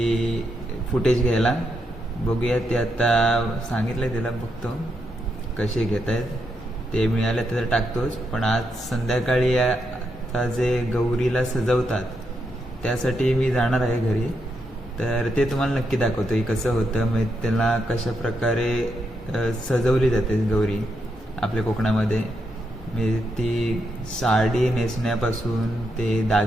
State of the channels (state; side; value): normal; both; correlation 0.81